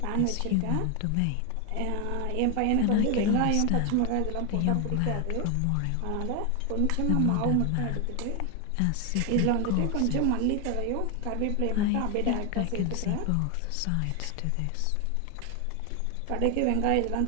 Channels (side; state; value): both; different; correlation 0.01